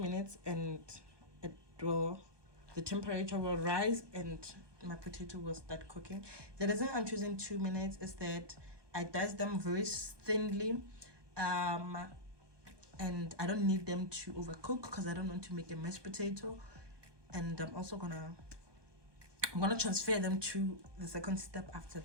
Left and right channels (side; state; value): left; late; 1.2 ms